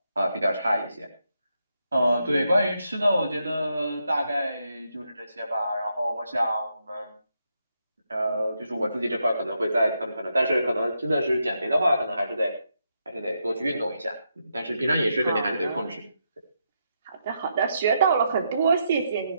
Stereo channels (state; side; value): inverted; both; correlation -0.81